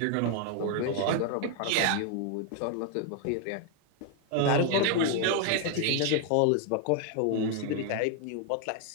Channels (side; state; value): both; different; correlation 0.00